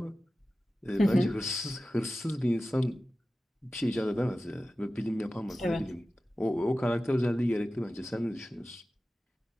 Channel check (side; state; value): both; normal; correlation 0.95